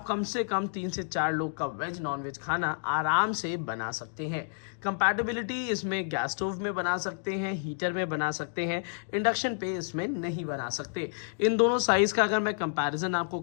कम से कम 3 से 4 लोग का वेज नॉन वेज खाना आराम से बना सकते हैं। कंपैटिबिलिटी इसमें गैस स्टोव में बना सकते हैं, हीटर में बना सकते हैं, इंडक्शन पे इसमें नहीं बना सकते। इन दोनों साइज़ का अगर मैं कंपैरिजन आपको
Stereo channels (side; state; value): right; silent; digital silence